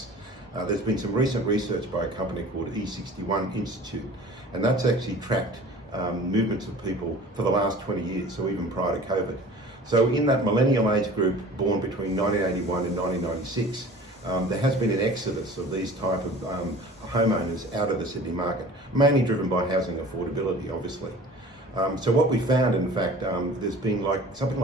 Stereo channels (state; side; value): normal; both; correlation 0.43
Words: There's been some recent research by a company called E61 Institute, and that's actually tracked movements of people for the last 20 years, so even prior to COVID. So in that millennial age group born between 1981 and 1996, there has been an exodus of these type of homeowners out of the Sydney market, mainly driven by housing affordability, obviously. So what we found, in fact, there's been something